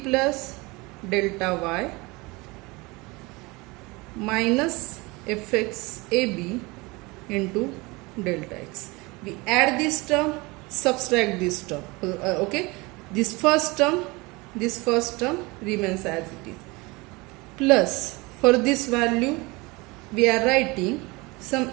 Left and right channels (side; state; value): left; quieter; 24.4 dB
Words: delta y minus fx ab into delta x. We add this term, subtract this term. Okay, this first term remains as it is, plus for this value we are writing some